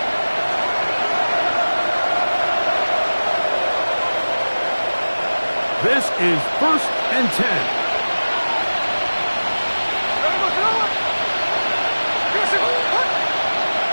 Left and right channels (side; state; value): both; inverted; correlation -1.00